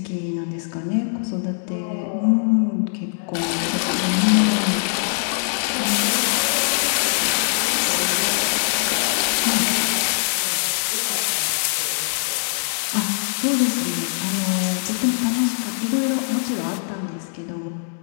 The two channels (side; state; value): right; silent; digital silence